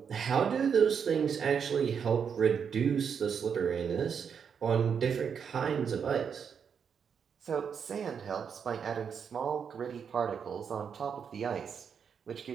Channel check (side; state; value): left; quieter; 7.0 dB